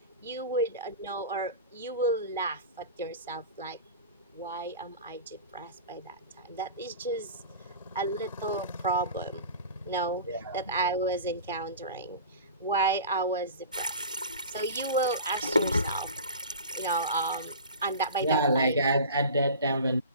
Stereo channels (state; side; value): inverted; both; correlation -0.36